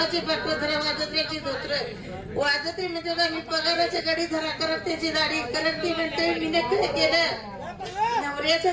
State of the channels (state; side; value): identical; both; correlation 1.00